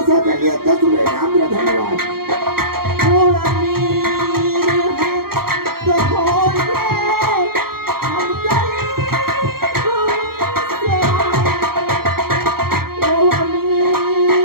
के लिए 10 रुपए इनाम दिया। धन्यवाद।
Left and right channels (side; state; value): left; late; 0.94 ms